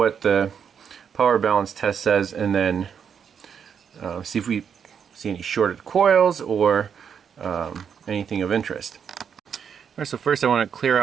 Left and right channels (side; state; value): left; quieter; 7.4 dB